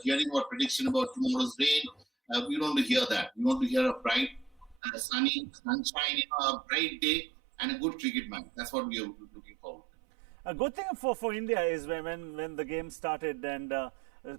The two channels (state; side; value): drops out; left; at 4.8 s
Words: hearing about prediction about tomorrow's rain. We don't want to hear that. We want to hear a bright, sunny, sunshine, a bright day, and a good cricket match. That's what we are looking forward to. A good thing for India is when the game started, and